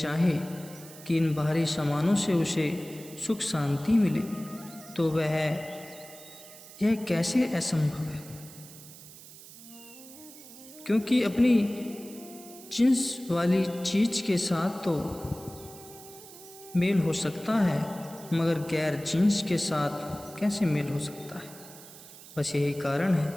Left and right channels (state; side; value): noise; right; hiss, 18 dB below the sound